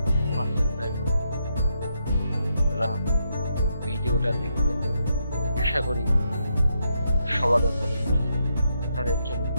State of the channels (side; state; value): both; inverted; correlation -0.80